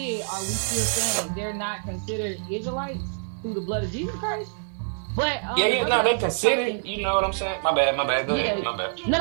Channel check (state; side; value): silent; left; 61 dB below the other